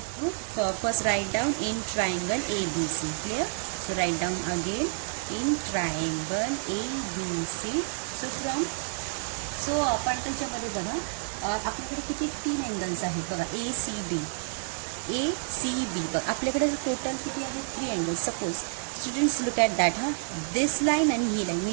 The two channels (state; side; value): silent; left; digital silence